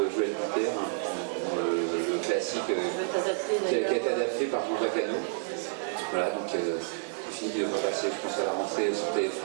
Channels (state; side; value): silent; left; digital silence